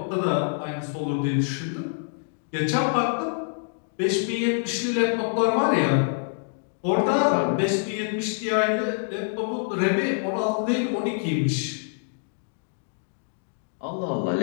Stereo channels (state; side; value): silent; right; digital silence